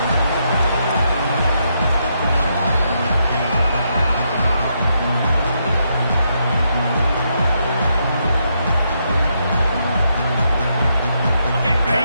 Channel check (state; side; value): inverted; both; correlation -0.79